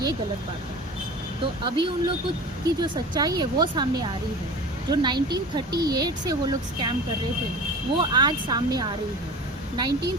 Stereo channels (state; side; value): normal; both; correlation 0.36